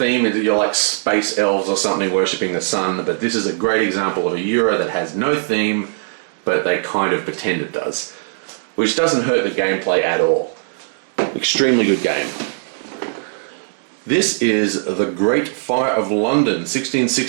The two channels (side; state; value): left; silent; digital silence